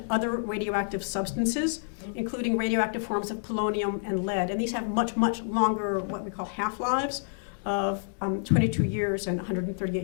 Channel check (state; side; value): silent; right; digital silence